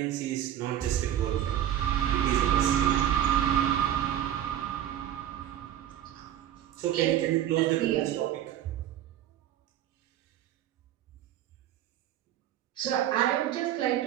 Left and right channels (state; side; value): quieter; left; 11.4 dB